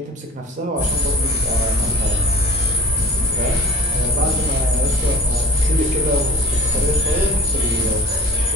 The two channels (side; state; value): both; normal; correlation 0.42